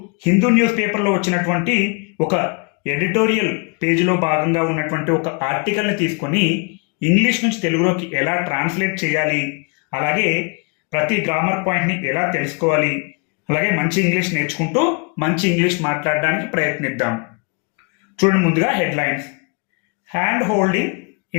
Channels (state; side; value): quieter; right; 33.8 dB